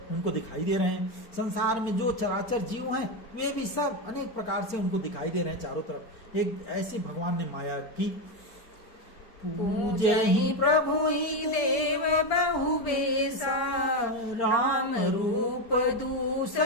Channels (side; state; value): right; late; 4.4 ms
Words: उनको दिखाई दे रहे हैं। संसार में जो चराचर जीव हैं वे भी सब अनेक प्रकार से उनको दिखाई दे रहे हैं चारों तरफ। एक ऐसी भगवान ने माया की। पूजे ही प्रभु ही देव बहु बेसा, राम रूप